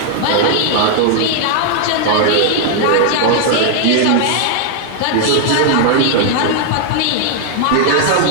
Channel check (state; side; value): different; both; correlation 0.00